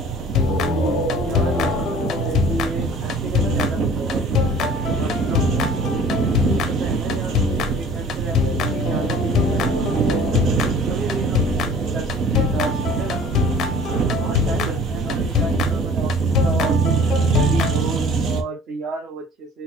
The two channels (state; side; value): normal; both; correlation 0.47